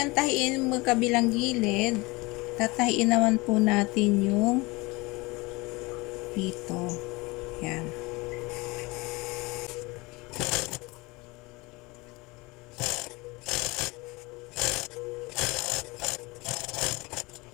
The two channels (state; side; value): quieter; right; 24.0 dB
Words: tahiin yung magkabilang gilid, tatahiin naman po natin yung dito. Yan.